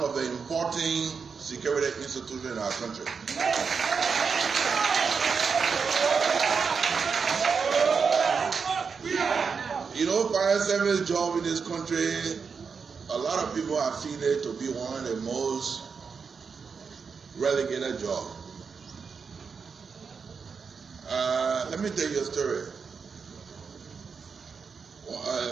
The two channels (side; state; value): left; quieter; 5.6 dB